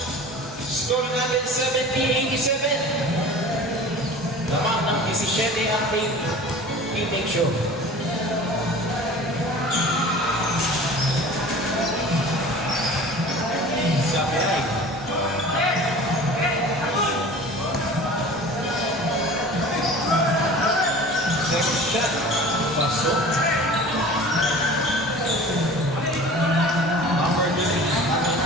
Score natin 17-87. Lamang ng 17 ang team show. Sabi ay. Second shot. Pasok. Number 3.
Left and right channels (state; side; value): normal; both; correlation 0.41